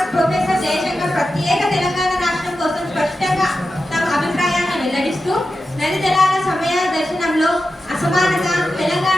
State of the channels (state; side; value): normal; both; correlation 0.91